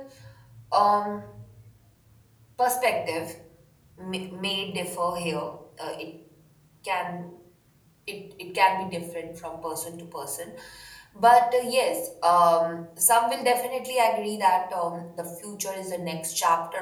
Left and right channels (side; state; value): both; identical; correlation 1.00